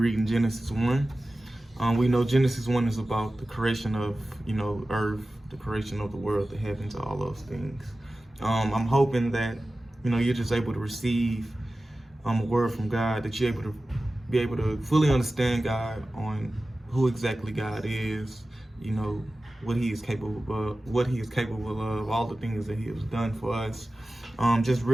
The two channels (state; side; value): normal; both; correlation 0.95